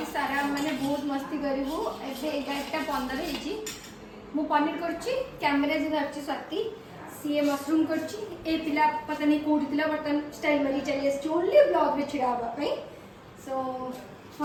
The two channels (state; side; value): identical; both; correlation 1.00